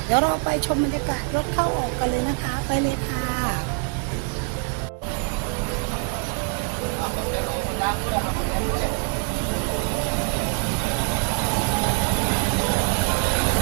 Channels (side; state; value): left; quieter; 34.4 dB